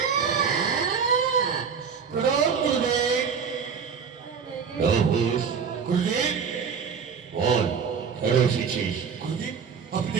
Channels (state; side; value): quieter; left; 6.4 dB